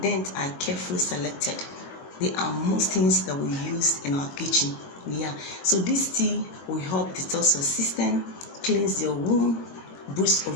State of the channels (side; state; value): right; late; 21 ms